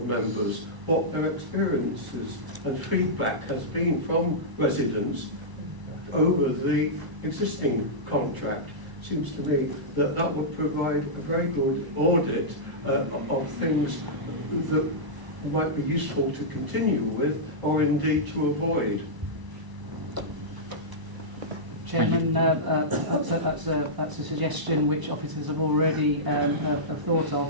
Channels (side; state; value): left; late; 1.0 ms